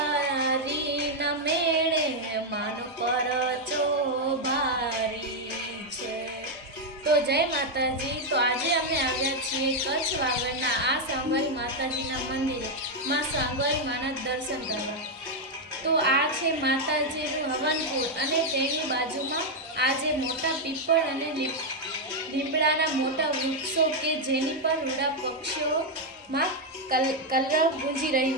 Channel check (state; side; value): normal; both; correlation 0.01